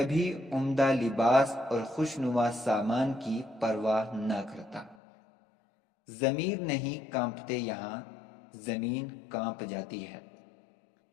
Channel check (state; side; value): drops out; right; at 5.0 s